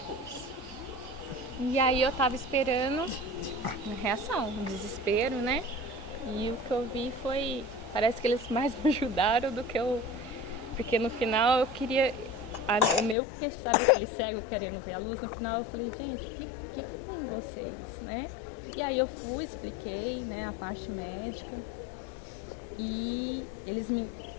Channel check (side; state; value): right; drops out; at 13.2 s